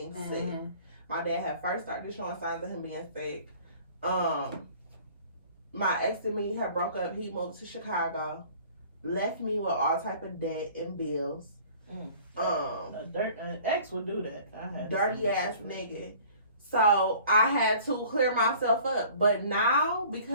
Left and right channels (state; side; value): inverted; both; correlation -0.50